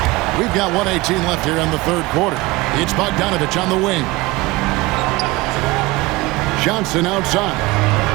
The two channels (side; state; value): left; quieter; 21.5 dB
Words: We've got 1:18 left here in the third quarter. It's Bogdanovich on the wing. Johnson outside.